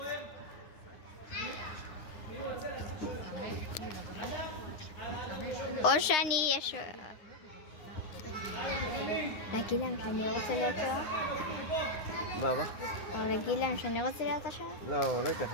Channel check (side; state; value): right; late; 9.7 ms